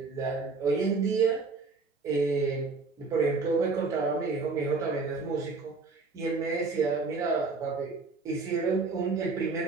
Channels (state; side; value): quieter; left; 4.2 dB